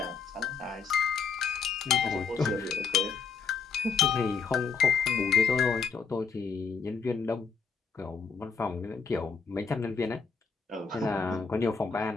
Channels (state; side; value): quieter; right; 5.6 dB